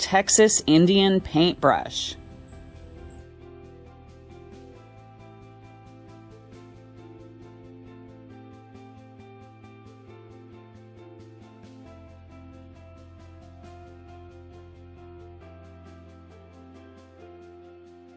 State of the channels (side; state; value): both; identical; correlation 1.00